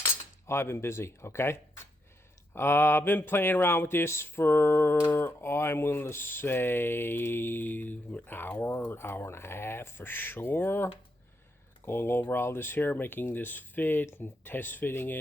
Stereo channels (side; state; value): both; normal; correlation 0.80